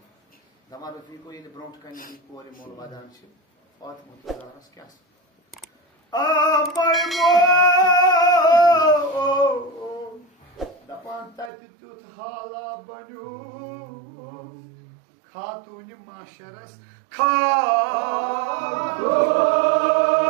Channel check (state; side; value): drops out; left; at 11.5 s